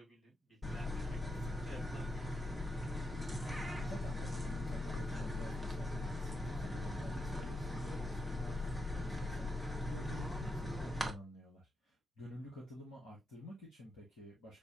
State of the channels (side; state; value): both; normal; correlation 0.85